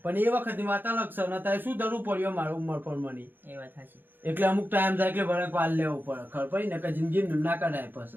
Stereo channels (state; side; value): late; left; 0.094 ms